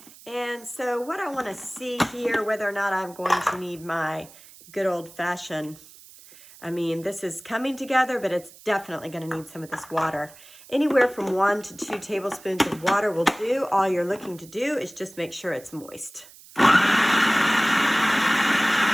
and so what I want to see here, whether or not I'm going to need my good old-fashioned, I mean, this is coming together, but it's definitely going to need some of this water. Anywhere from 1 to 2 tablespoons of water will do. All you're looking to do is just make sure it's moist. All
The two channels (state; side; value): noise; right; hiss, 21 dB below the sound